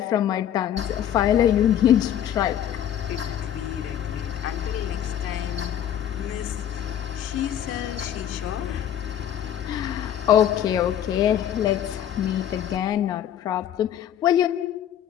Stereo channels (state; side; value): quieter; right; 10.4 dB